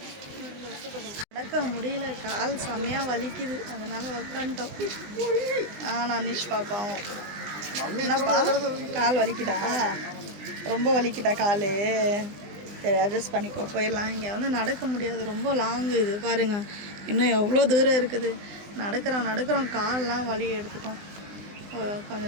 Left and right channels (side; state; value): left; late; 20 ms